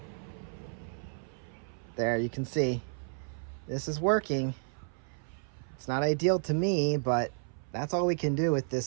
There, you can see this is working. It's not ideal to me, but that's all we can do with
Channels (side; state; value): left; silent; 56 dB below the other